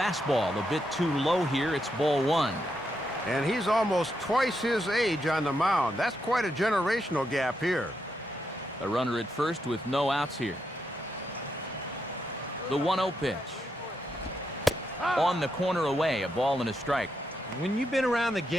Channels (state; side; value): normal; both; correlation 0.82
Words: a bit too low here. It's ball one. And he's almost twice his age on the mound. That's quite a generational gap here. A runner at first with no outs here. The 1-0 pitch. On the corner away, a ball and a strike. When you've been around the